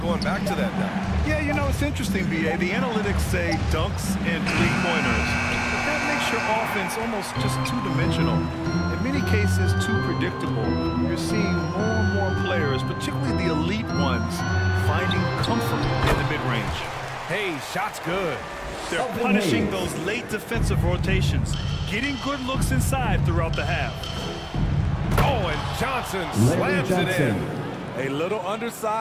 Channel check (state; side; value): identical; both; correlation 1.00